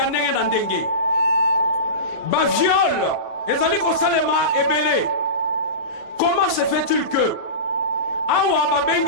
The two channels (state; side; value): late; right; 40 ms